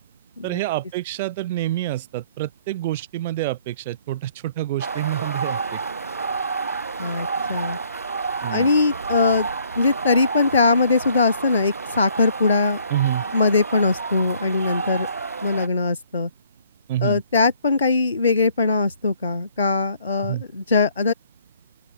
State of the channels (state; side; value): inverted; both; correlation -0.62